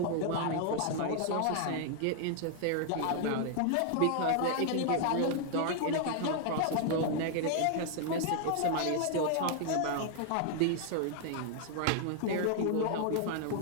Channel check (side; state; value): both; different; correlation 0.00